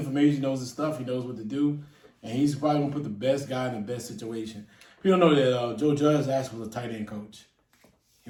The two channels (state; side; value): identical; both; correlation 1.00